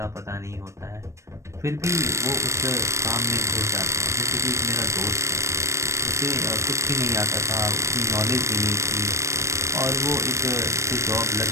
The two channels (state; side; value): late; left; 0.14 ms